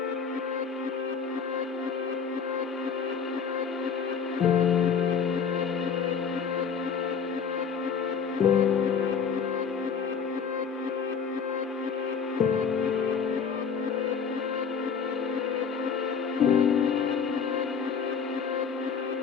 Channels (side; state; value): right; quieter; 6.5 dB